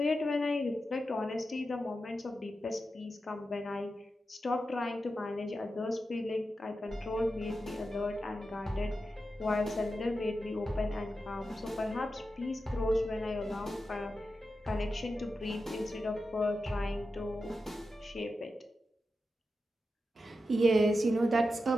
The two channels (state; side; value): normal; both; correlation 0.90